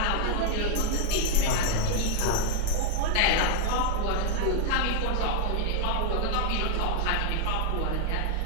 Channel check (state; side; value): different; both; correlation 0.00